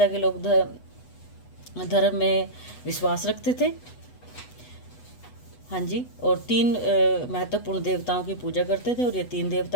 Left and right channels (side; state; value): right; late; 8.1 ms